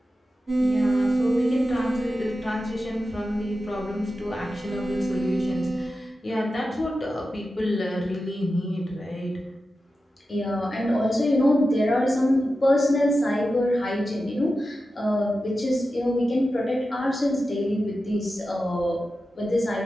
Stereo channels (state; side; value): normal; both; correlation 0.92